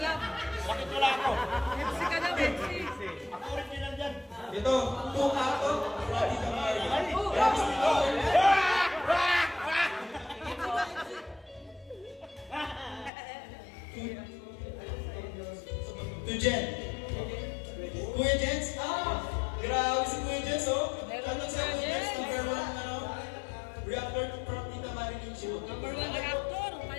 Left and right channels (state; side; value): drops out; right; at 13.1 s